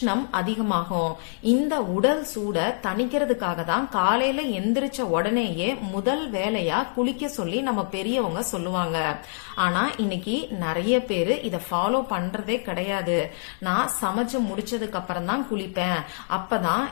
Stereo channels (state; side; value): silent; right; digital silence